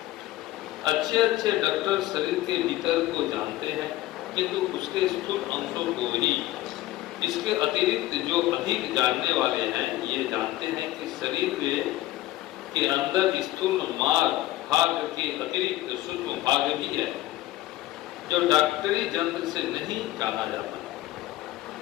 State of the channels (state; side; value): quieter; right; 16.3 dB